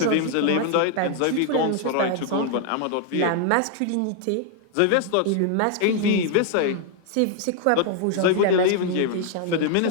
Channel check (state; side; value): different; both; correlation 0.00